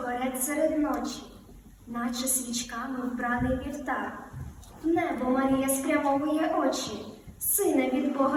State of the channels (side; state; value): both; identical; correlation 1.00